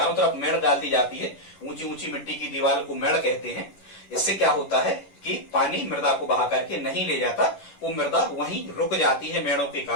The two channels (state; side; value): late; right; 10 ms